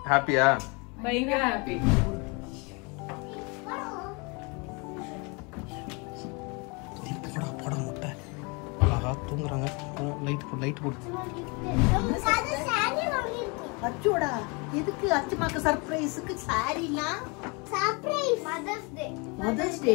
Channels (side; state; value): right; quieter; 30.5 dB